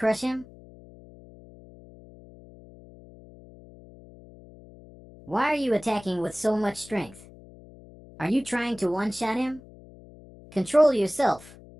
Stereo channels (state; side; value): noise; left; hum, 21 dB below the sound